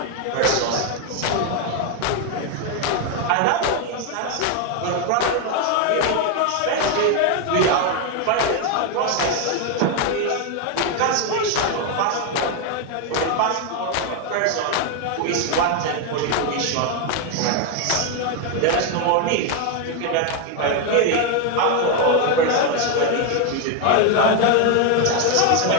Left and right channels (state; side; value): different; both; correlation 0.01